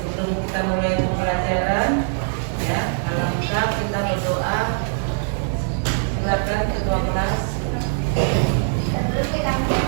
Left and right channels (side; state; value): left; silent; digital silence